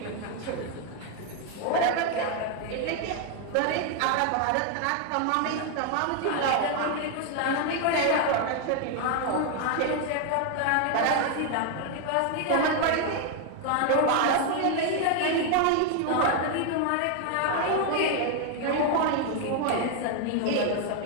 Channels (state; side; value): different; both; correlation 0.00